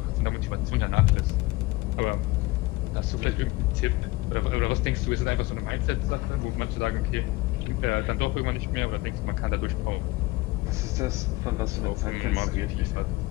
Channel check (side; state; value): right; quieter; 20.7 dB